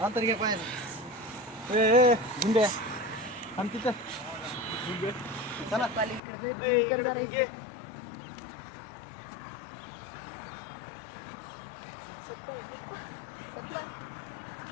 अंतर घे पाहिजे गुंड्या आम तिथं चला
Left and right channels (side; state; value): right; drops out; at 6.2 s